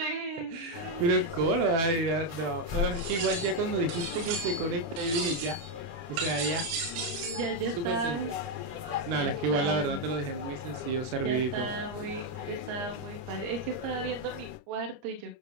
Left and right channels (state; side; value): late; left; 30 ms